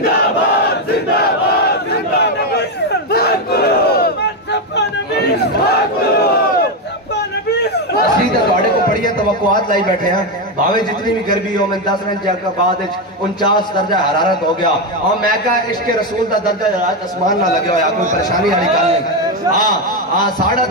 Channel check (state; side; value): normal; both; correlation 0.08